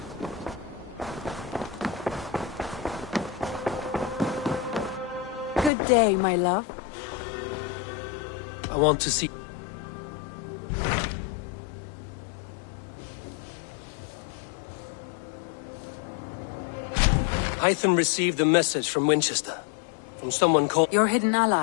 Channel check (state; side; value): drops out; right; at 5.7 s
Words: Good day, my love? I want to see... Hytham received a message from Winchester. From someone called... Your hidden